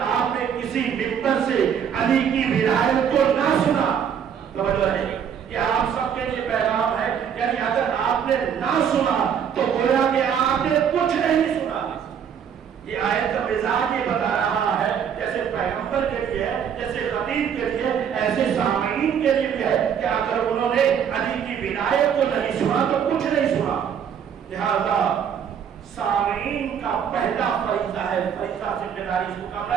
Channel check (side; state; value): left; quieter; 8.1 dB